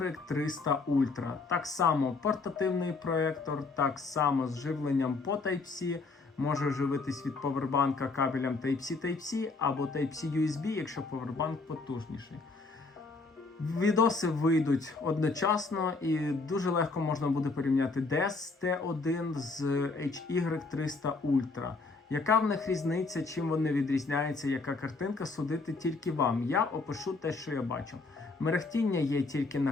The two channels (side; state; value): right; quieter; 3.8 dB